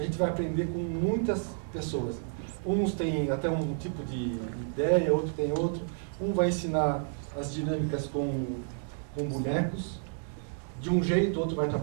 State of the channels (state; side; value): silent; left; digital silence